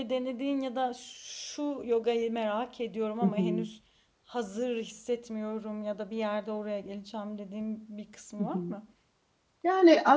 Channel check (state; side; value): identical; both; correlation 1.00